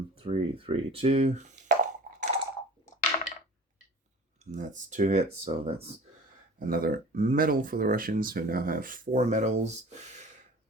3, 2. And that's 2 hits, so that's another medal for the Russians, who now have 4 medals.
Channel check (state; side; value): normal; both; correlation 0.42